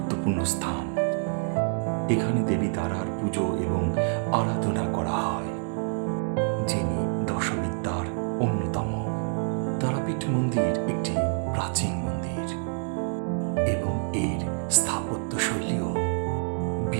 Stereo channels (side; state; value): left; silent; 60 dB below the other